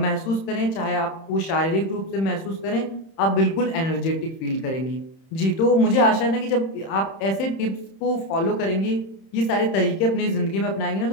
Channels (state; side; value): late; right; 31 ms